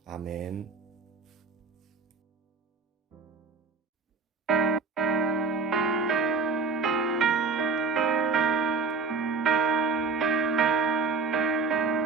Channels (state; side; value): quieter; left; 4.6 dB